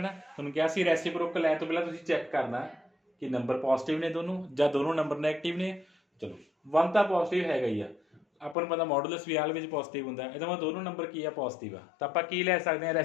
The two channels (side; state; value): right; drops out; at 8.6 s